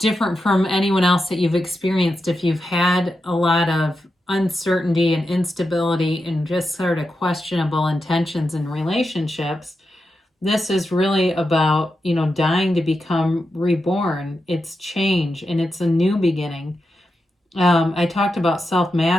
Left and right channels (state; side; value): normal; both; correlation 0.88